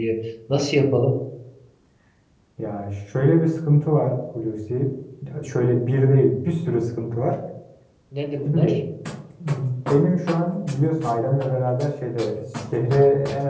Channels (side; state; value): both; identical; correlation 1.00